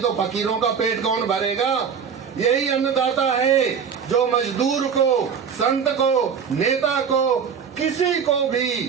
तो फकीरों का पेट कौन भरेगा? यही अन्नदाता है जो मजदूर को, संत को, नेता को, किसी को भी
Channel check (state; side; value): quieter; left; 6.8 dB